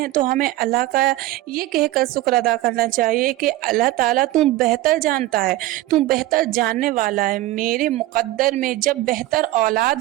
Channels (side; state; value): left; quieter; 16.7 dB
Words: तो हमें अल्लाह का ये कहकर शुक्र अदा करना चाहिए कि अल्लाह ताला तू बेहतर जानता है, तू बेहतर जानने वाला है। मेरे मुक़द्दर में जब बेहतर